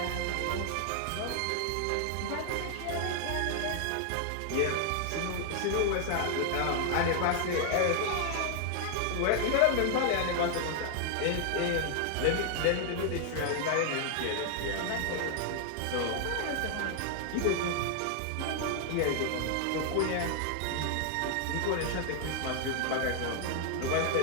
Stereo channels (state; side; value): different; both; correlation 0.00